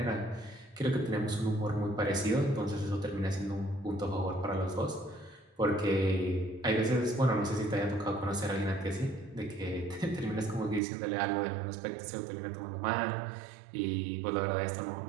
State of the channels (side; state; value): left; drops out; at 10.8 s